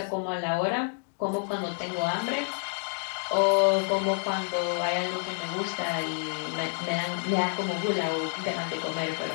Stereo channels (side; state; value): right; silent; 59 dB below the other